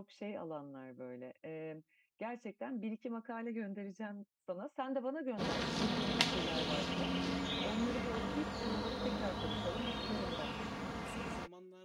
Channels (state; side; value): identical; both; correlation 1.00